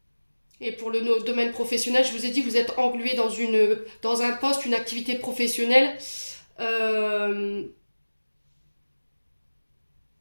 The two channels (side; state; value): both; inverted; correlation -1.00